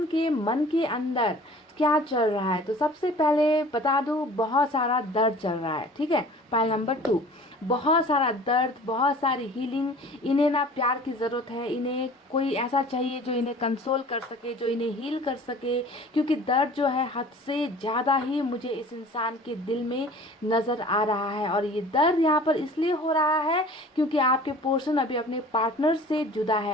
के मन के अंदर क्या चल रहा है, तो सबसे पहले बता दूं बहुत सारा दर्द चल रहा है, ठीक है। पॉइंट नंबर 2, बहुत सारा दर्द, बहुत सारी हीलिंग। इन्हें ना प्यार की ज़रूरत है, इन्हें कोई ऐसा चाहिए जो इन्हें कंसोल कर सके, जो इन्हें हील कर सके, क्योंकि दर्द जो है हद से ज़्यादा ही मुझे इस इंसान के दिल में नज़र आ रहा है। और ये दर्द यहाँ पर इसलिए हो रहा है क्योंकि आपके पोर्शन अभी अपने पार्टनर से जुदा है।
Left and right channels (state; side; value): normal; both; correlation 0.45